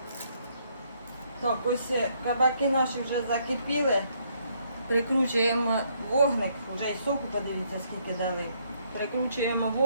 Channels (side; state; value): both; inverted; correlation -0.70